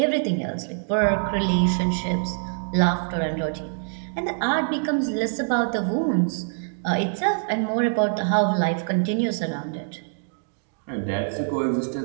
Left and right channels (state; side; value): silent; left; digital silence